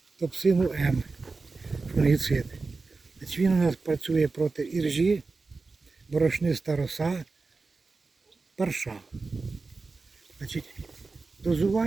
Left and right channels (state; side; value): quieter; left; 4.0 dB